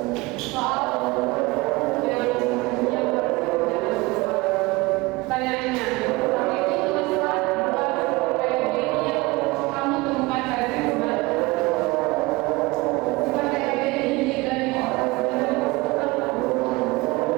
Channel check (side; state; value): left; quieter; 23.1 dB